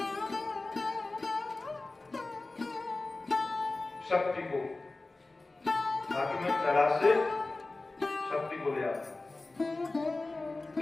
शक्ति को बाकी में कैलाश से शक्ति को ले आता,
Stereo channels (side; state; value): right; quieter; 3.2 dB